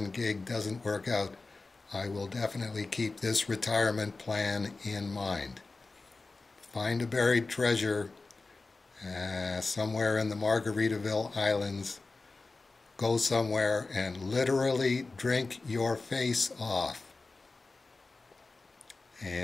gig doesn't work out, I will definitely keep this retirement plan in mind. Find a buried treasure somewhere in the Margaritaville Islands. Go somewhere and literally drink your face off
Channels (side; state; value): right; quieter; 3.6 dB